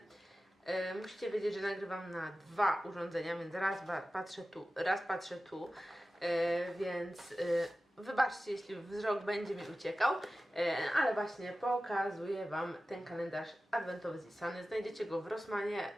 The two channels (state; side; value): normal; both; correlation 0.95